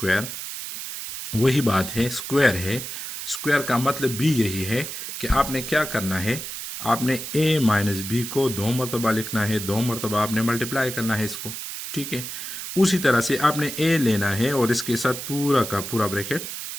वही बात है, स्क्वायर है, स्क्वायर का मतलब भी यही है कि आपने क्या करना है, आपने a माइनस बी को 2 मरतबा लिखना है, 2 मरतबा आपने मल्टीप्लाई करना है इसको, ठीक है। उसी तरह से आपने a लेना है और इसके साथ पूरा का पूरा ब्रैकेट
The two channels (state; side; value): noise; right; hiss, 7 dB below the sound